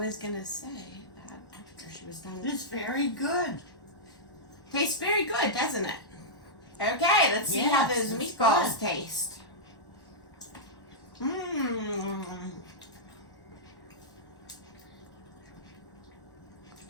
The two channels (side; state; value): right; late; 1.1 ms